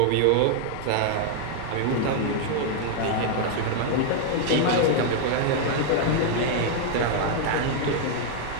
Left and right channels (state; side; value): different; both; correlation 0.00